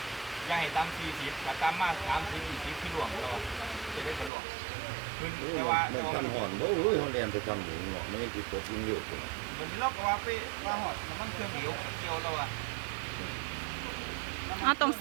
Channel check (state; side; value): drops out; left; at 4.3 s